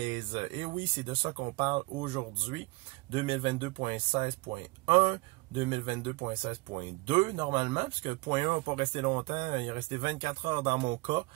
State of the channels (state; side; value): quieter; left; 24.8 dB